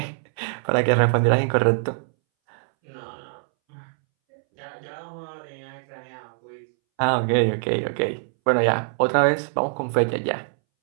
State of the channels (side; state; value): left; silent; 63 dB below the other